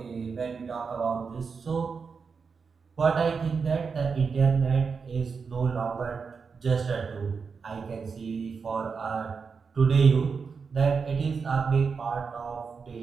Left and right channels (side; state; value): left; quieter; 5.4 dB